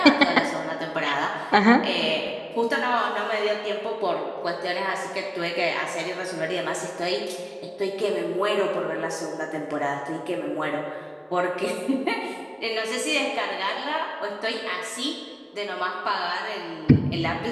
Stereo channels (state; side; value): identical; both; correlation 1.00